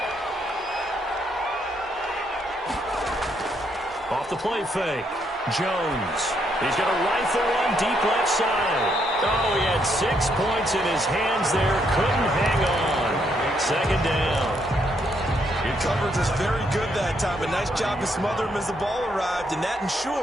Off the play fake. Jones. He's going to rifle one deep left side. Oh, he had 6 points in his hands there. Couldn't hang on. Second down. Your coverage was very good that time. A nice job to smother him as the ball arrived, and that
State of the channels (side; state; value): both; normal; correlation 0.74